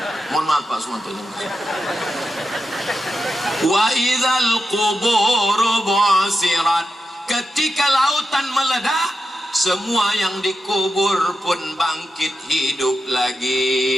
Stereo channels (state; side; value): normal; both; correlation 0.88